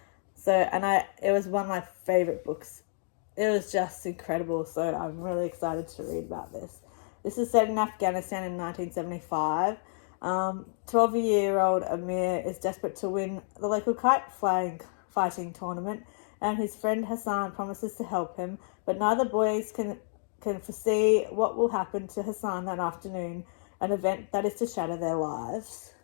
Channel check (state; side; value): silent; right; digital silence